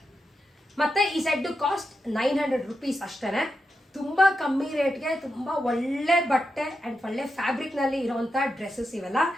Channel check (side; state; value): both; normal; correlation 0.87